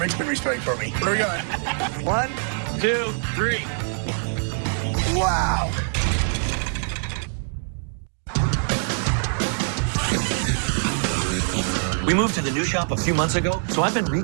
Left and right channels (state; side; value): silent; left; 63 dB below the other